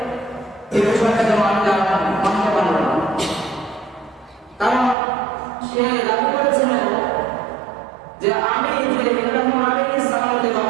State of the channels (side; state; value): left; drops out; at 5.0 s